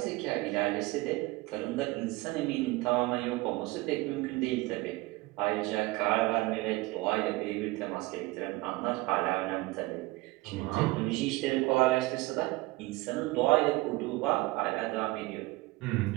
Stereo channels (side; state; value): left; quieter; 21.0 dB